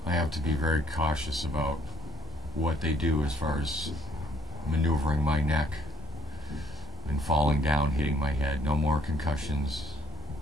I have to be very cautious about what they do as far as maneuvering my neck and falling down, hitting my head. No more concussions.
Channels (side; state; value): both; normal; correlation 0.64